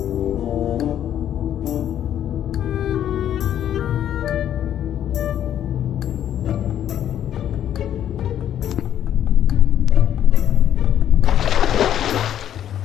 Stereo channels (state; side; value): quieter; right; 10.5 dB